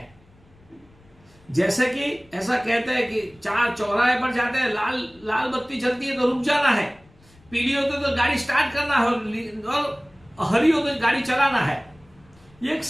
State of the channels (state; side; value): noise; left; rumble, 29 dB below the sound